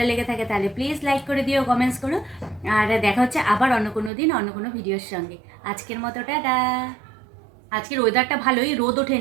লেগে থাকে তাহলে প্লিজ লাইক করে দিও, কমেন্টস করো। আর দেখা হচ্ছে আবার অন্য কোনো দিন অন্য কোনো ভিডিওর সঙ্গে। আজকের মতো টাটা। আজকের ওয়েদারটা ভালোই, রোদ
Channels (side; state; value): left; drops out; at 4.1 s